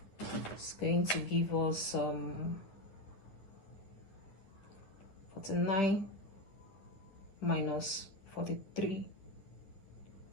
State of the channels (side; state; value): right; late; 9.8 ms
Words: is going to give us 49 minus